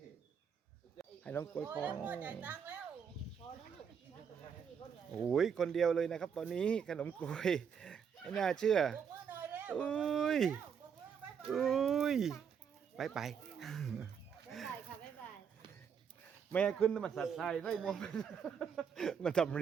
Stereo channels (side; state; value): left; quieter; 7.2 dB